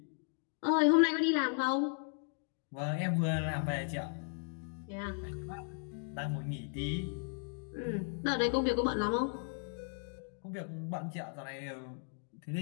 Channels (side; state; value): right; silent; 54 dB below the other